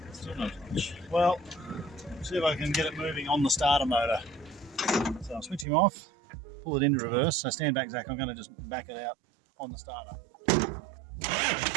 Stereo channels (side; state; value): left; drops out; at 5.7 s